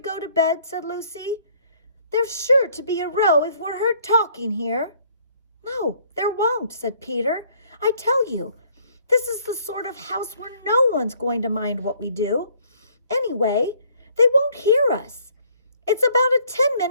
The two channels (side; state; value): both; inverted; correlation -0.62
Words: to bed?" said Lucy. "There's sure to be a row if we're heard talking here." "No, there won't," said Peter. "I tell you, this is the sort of house where no one's going to mind what we do. Anyway, they won't hear us. It's about a